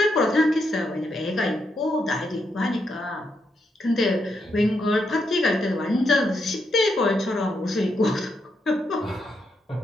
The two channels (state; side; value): normal; both; correlation 0.80